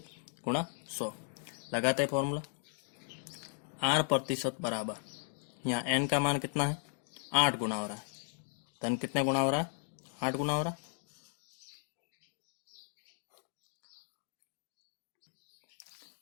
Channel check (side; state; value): right; silent; digital silence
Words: गुणा 100 लगाते हैं फॉर्मूला। 8% बराबर, यहाँ n का मान कितना है, 8 गुना हो रहा है। धन कितने गुना हो रहा है, 8 गुना हो रहा है।